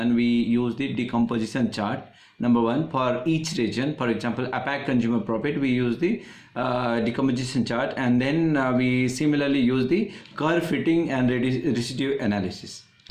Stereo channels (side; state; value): both; identical; correlation 1.00